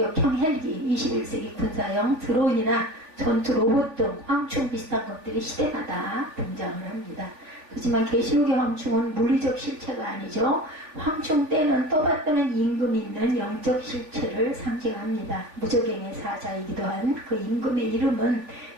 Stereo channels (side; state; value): left; late; 3.4 ms